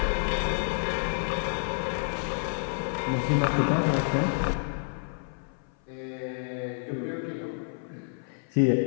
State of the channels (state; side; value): silent; right; 59 dB below the other